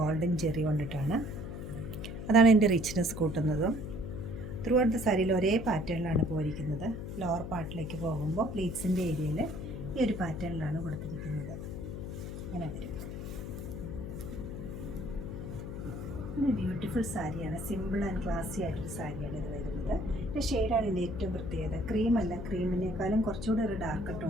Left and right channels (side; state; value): left; noise; hum, 7 dB below the sound